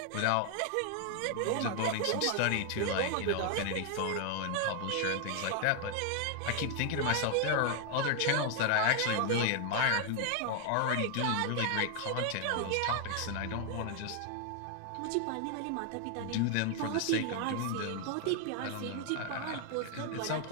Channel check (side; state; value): both; different; correlation 0.00